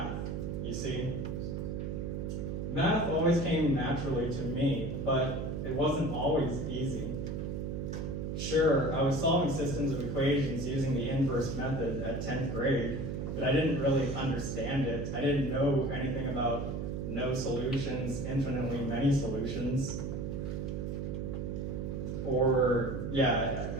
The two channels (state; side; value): noise; right; hum, 3 dB below the sound